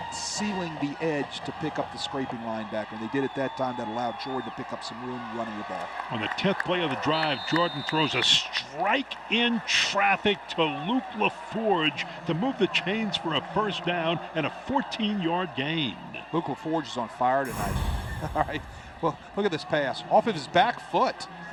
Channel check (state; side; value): identical; both; correlation 1.00